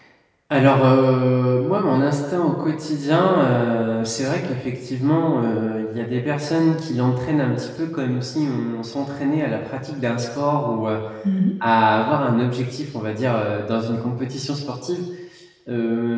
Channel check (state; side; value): identical; both; correlation 1.00